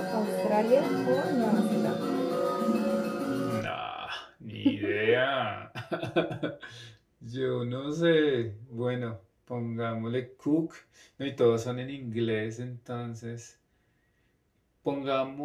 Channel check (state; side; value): identical; both; correlation 1.00